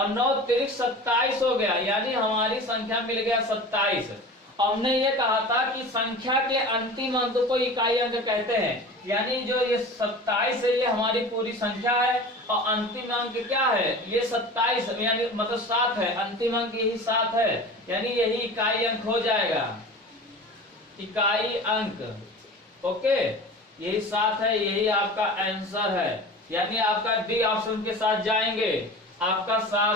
9 त्रिक 27 हो गया, यानी हमारी संख्या मिल गया 27। हमने ये कहा था कि संख्या के अंतिम अंक को इकाई अंक कहते हैं, यानी जो ये 27 है ये हमारी पूरी संख्या है और अंतिम अंक क्या है, ये 27, यानी मतलब 7 है, अंतिम अंक यही 7 है, यानी यही इकाई अंक हो जाएगा, इकाई अंक। ओके, यही 7 है, यही आपका आंसर है, यानी आपका डी ऑप्शन के साथ जाएंगे, आपका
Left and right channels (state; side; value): normal; both; correlation 0.36